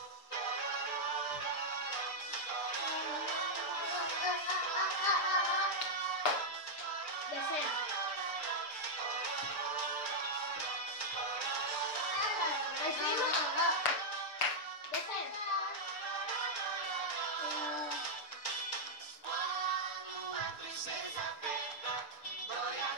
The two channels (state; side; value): late; right; 6.8 ms